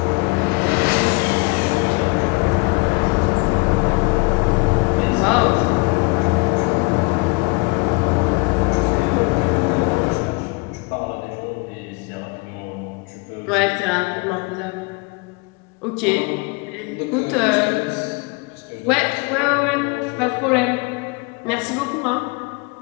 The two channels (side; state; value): right; quieter; 28.1 dB